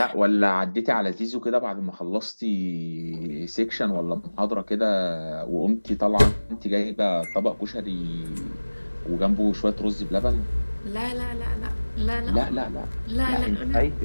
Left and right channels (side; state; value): both; inverted; correlation -1.00